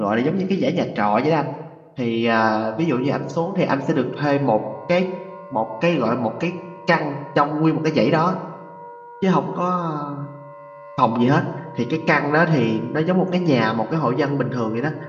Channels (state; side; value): identical; both; correlation 1.00